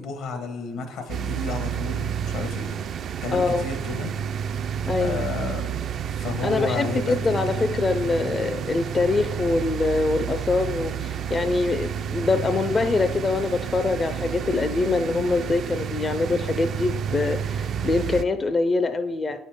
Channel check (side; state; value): both; normal; correlation 0.77